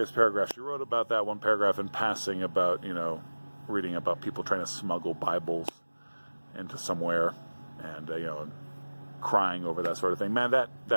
paragraphs, she wrote about that one paragraph in passing about, you know, reading about people trying to smuggle Bibles into somewhere and, you know, crying over that sort of thing. Man,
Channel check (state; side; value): inverted; both; correlation -1.00